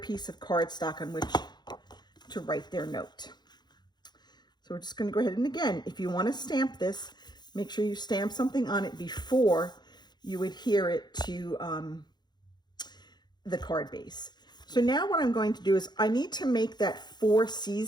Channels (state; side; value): late; right; 0.21 ms